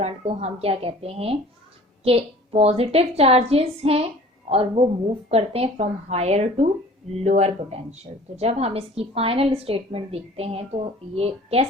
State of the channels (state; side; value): normal; both; correlation 0.47